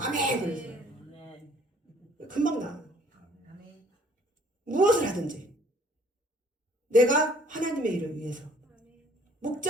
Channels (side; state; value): both; normal; correlation 0.58